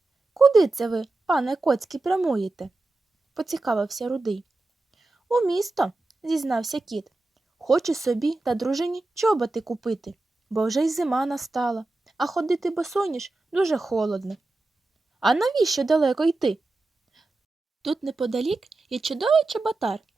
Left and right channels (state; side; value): quieter; left; 3.1 dB